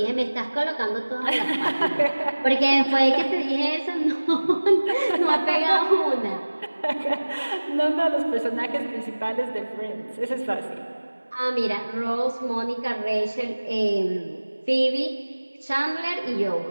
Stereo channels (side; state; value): both; inverted; correlation -1.00